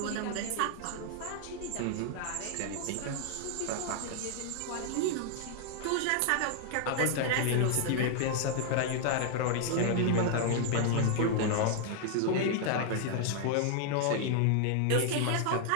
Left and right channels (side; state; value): both; different; correlation 0.00